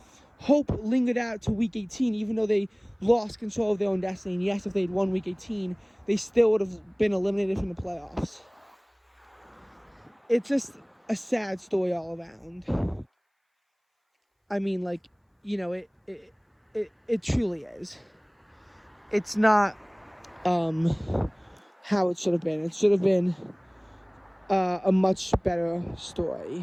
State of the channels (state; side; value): identical; both; correlation 1.00